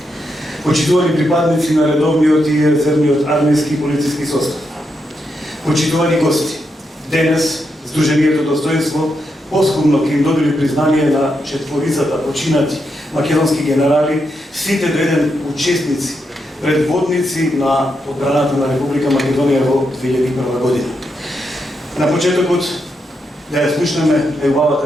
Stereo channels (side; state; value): both; normal; correlation 0.83